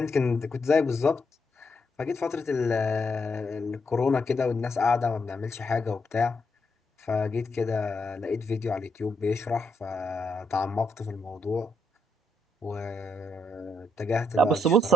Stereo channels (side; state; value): both; normal; correlation 0.79